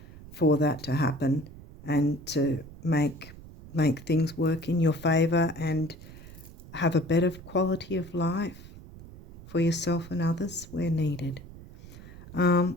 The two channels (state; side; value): noise; right; rumble, 17 dB below the sound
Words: for that to happen and to make things work in your favor and have a better quality of life for yourself and others where needed.